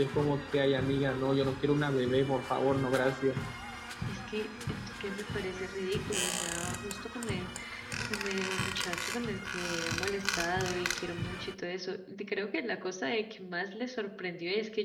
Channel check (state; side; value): identical; both; correlation 1.00